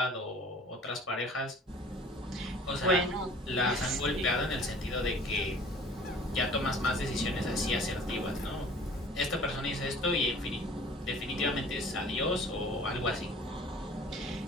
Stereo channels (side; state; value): both; normal; correlation 0.48